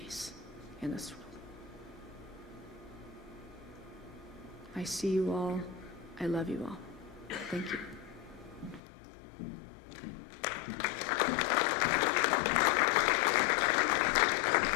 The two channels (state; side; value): drops out; right; at 8.8 s